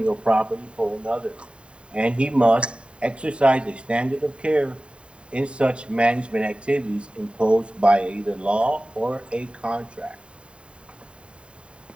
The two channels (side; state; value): left; late; 0.055 ms